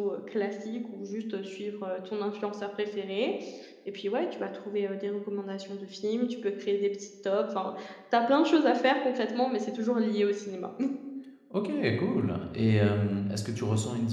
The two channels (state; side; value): identical; both; correlation 1.00